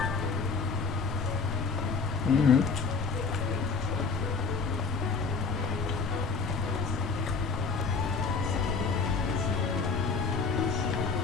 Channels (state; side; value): quieter; right; 4.7 dB